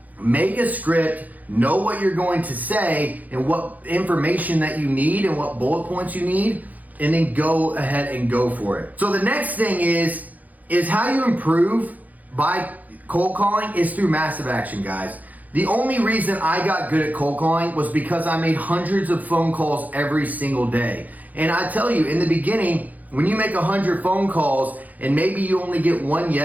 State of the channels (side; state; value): left; late; 0.080 ms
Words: Make a script. Know what you're going to say and what information that you need and what bullet points you need, and then go ahead and go for it. So the next thing is how you improve by cold calling is through massive action, guys. The only reason I got good at cold calling was because I made hundreds of phone calls every single day. And I tell you, in the beginning, when you make 100 phone calls and maybe you only get one